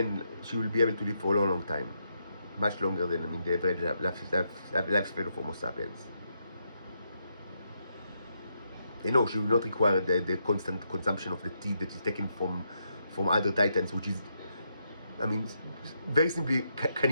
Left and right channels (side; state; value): both; inverted; correlation -0.80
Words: will be able to live for a long, long time, much longer than the average lifespan of Homo sapiens. She will not require the constant consumption of the teeth that is taken from other titans, which is, very simply